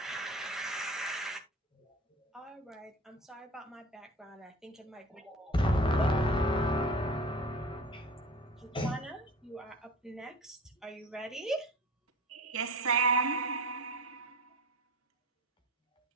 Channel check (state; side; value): normal; both; correlation 0.37